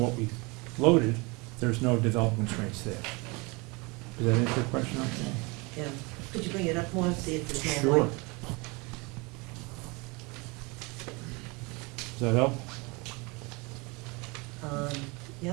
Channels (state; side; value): quieter; left; 27.3 dB